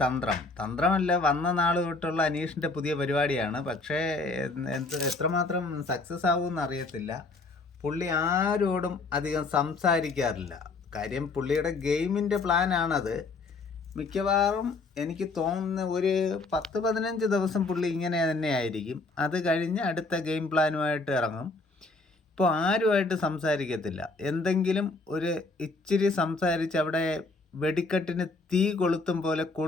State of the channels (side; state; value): right; quieter; 3.6 dB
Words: തന്ത്രമല്ല, വന്ന നാൾ തൊട്ടുള്ള അനീഷിൻ്റെ പുതിയ പരിപാടിയാണ്. പക്ഷേ എത്രമാത്രം സക്സസ് ആവുമെന്ന് അറിയത്തില്ല. പുള്ളി ആരോടും അധികം സംസാരിക്കാറില്ല. കാര്യം പുള്ളിയുടെ ഗെയിമിൻ്റെ പ്ലാനാണത്. മിക്കവാറും എനിക്ക് തോന്നുന്ന ഒരു 10-15 ദിവസം പുള്ളി ഇങ്ങനെ തന്നെ ആയിരിക്കും. അത് കഴിഞ്ഞ് അടുത്ത ഗെയിം പ്ലാനുമായിട്ട് ഇറങ്ങും. ഇപ്പോൾ ആരുമായിട്ട് സംസാരിക്കത്തില്ല. എന്തെങ്കിലും ഒരു ഇച്ചിരി സംസാരിച്ച് അവിടെ വെടിക്കെട്ടിന് തീ കൊളുത്തും പോലെ